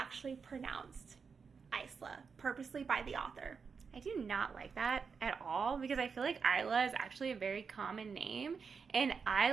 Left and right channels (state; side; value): quieter; left; 5.6 dB